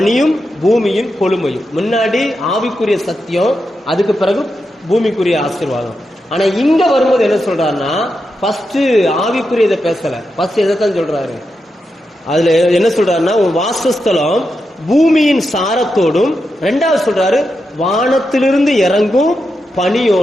பூமியின் கொழுமையும். முன்னாடி ஆவிக்குரிய சத்தியம், அதுக்கு பிறகு பூமிக்குரிய ஆசீர்வாதம். ஆனா இங்க வரும்போது என்ன சொல்றாருன்னா, ஃபர்ஸ்ட் ஆவிக்குரியதை பேசல, ஃபர்ஸ்ட் எதைத்தான் சொல்றாரு, அதுல என்ன சொல்றாருன்னா, உன் வாசஸ்தலம் பூமியின் சாரத்தோடும், ரெண்டாவது சொல்றாரு வானத்திலிருந்து இறங்கும்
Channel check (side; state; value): both; normal; correlation 0.87